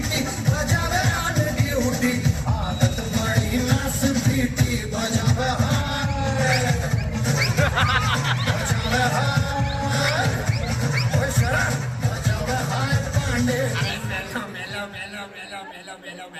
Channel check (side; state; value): both; identical; correlation 1.00